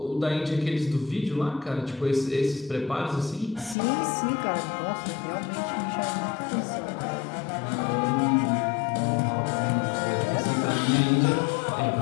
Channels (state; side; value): drops out; right; at 3.8 s